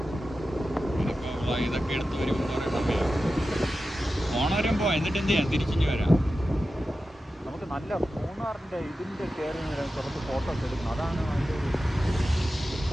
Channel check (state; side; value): normal; both; correlation 0.93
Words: ഇതൊക്കെ എടുത്ത് വരുമ്പോൾ കുറേ സമയം ഓണവരം പോവാം. എന്നിട്ട് എന്ത് ചെയ്യാം? തിരിച്ചിഞ്ഞ് വരാം. നമുക്ക് നല്ല മൂന്നാറിൻ്റെ ഇതിൻ്റെ കയറി കുറച്ച് ഫോട്ടോസ് എടുക്കണം. അതാണ് അതിൻ്റെ ഒരു